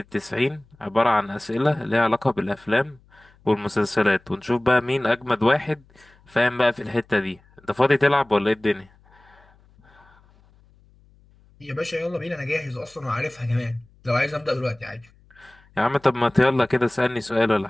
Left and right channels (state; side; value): noise; left; hum, 30 dB below the sound